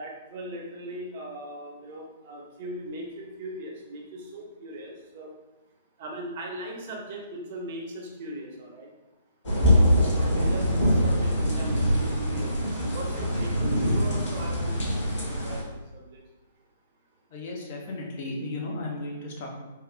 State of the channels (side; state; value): both; inverted; correlation -0.74